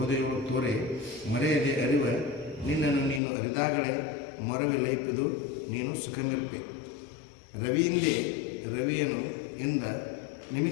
ತೋರೆ ಮರೆಯದೆ ಅರಿವ ನಿನ್ನನ್ನು ನೀನು ಅರಿದಾಗಲೇ ಮೊರವೆ ಲೈಪುದು ನೀನು ಸುಖಮಿಲ್ಪೆ. ರವಿಯಿಂದೇ ರವಿಯನು ಎಂದ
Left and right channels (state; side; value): drops out; right; at 3.2 s